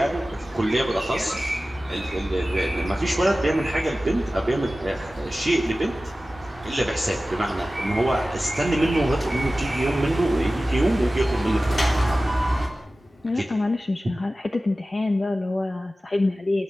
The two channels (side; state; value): both; normal; correlation 0.96